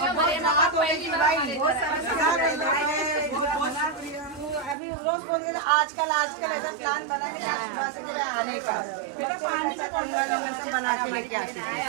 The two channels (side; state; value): left; drops out; at 4.8 s